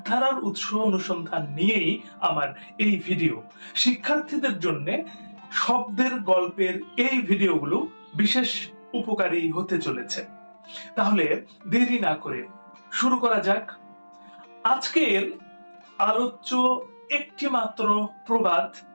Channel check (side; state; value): both; inverted; correlation -1.00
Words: উৎস অনুসন্ধান নিয়েই আমার এই ভিডিও। শিক্ষার্থীদের জন্য শব্দের গল্পের এই ভিডিওগুলো বিশেষ উপকারী হতে চলেছে। তাহলে দেরি না করে শুরু করা যাক। আজকের আলোচ্য একটি মাত্র প্রবাদ,